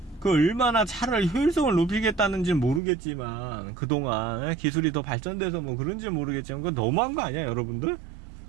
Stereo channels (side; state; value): left; drops out; at 2.8 s